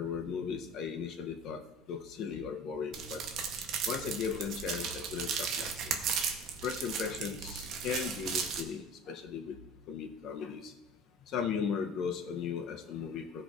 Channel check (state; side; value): normal; both; correlation 0.40